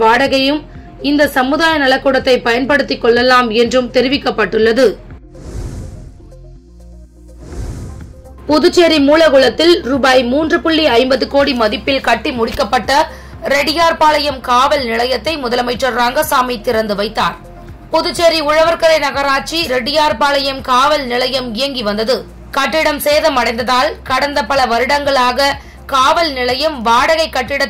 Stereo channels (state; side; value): identical; both; correlation 1.00